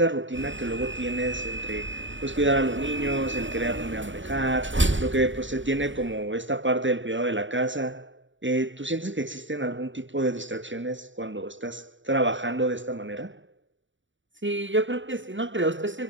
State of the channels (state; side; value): late; left; 0.55 ms